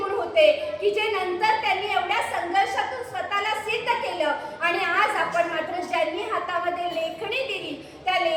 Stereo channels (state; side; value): identical; both; correlation 1.00